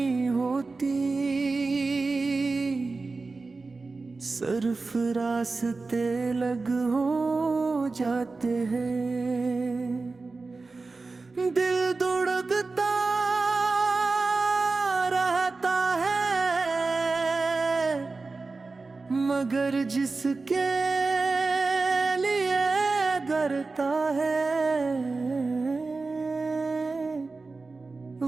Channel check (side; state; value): left; quieter; 3.8 dB